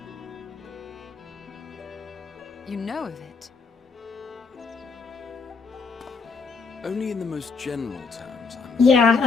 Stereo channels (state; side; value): quieter; right; 4.7 dB